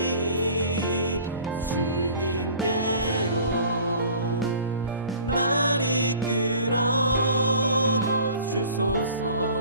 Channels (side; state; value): both; inverted; correlation -0.46